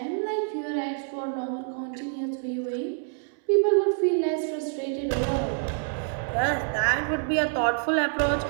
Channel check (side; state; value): left; silent; 60 dB below the other